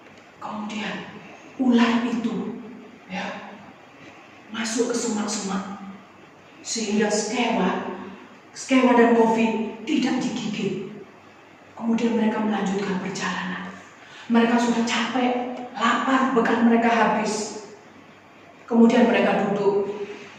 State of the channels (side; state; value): both; identical; correlation 1.00